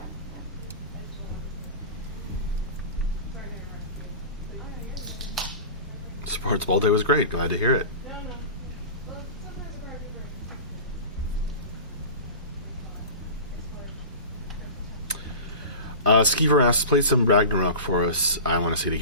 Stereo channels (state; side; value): inverted; both; correlation -0.33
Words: Sports ball day was great. Glad to hear it. Skeever asks, play some Ragnarok for us. I want to see it